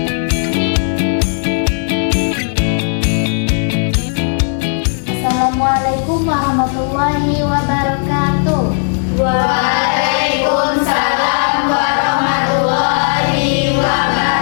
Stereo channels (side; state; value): right; silent; 63 dB below the other